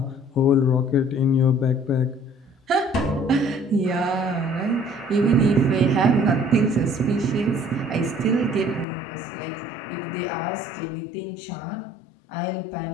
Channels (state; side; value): drops out; right; at 8.8 s